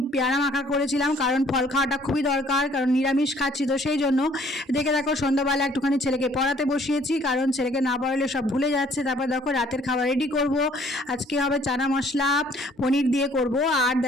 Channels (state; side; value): normal; both; correlation 0.60